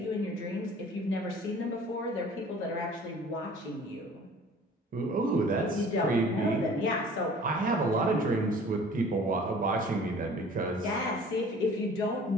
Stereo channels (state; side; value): normal; both; correlation 0.48